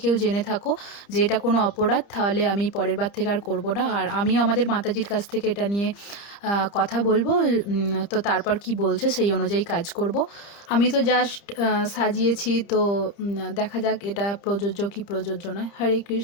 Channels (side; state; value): right; late; 30 ms